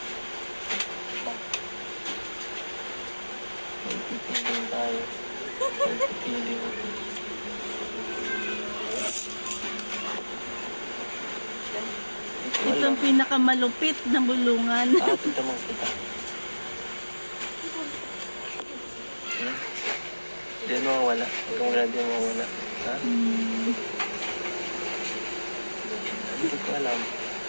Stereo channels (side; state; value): both; inverted; correlation -1.00